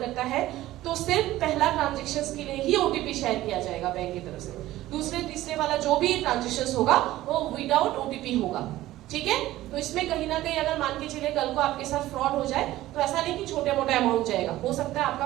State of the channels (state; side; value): quieter; left; 15.6 dB